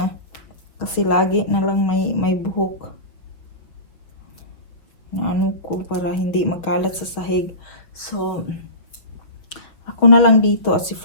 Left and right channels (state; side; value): late; right; 6.0 ms